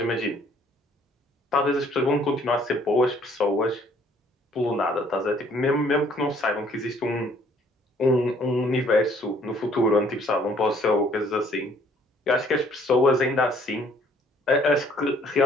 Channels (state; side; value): normal; both; correlation 0.61